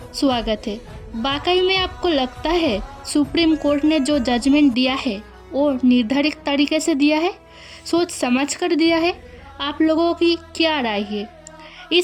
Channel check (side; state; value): both; identical; correlation 1.00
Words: स्वागत है। वाकई में आपको लगता है सुप्रीम कोर्ट ने जो जजमेंट दिया है वो निर्धारित तरीके से दिया है, सोच समझ कर दिया है? आप लोगों की क्या राय है?